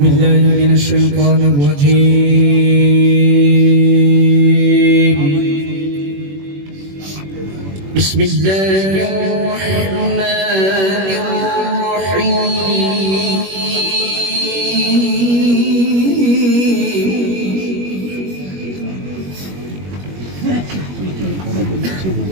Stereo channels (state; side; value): late; left; 21 ms